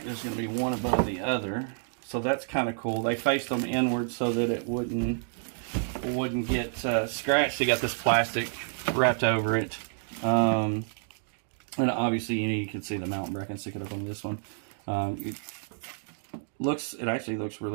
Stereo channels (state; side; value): silent; left; digital silence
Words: there's going to be one above the other, so that's kind of cool. They faced them inward so that it wouldn't get scratched. They got this plastic wrapped over it, and obviously you can see the mountain bracket. Stick it up on this one. It actually looks